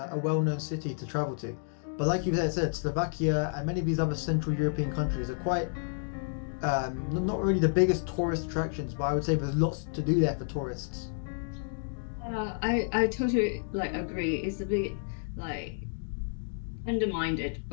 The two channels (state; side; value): silent; right; digital silence